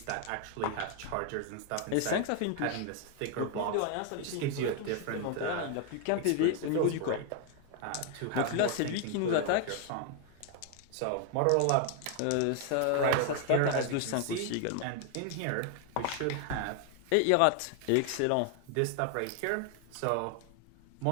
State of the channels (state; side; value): different; both; correlation 0.00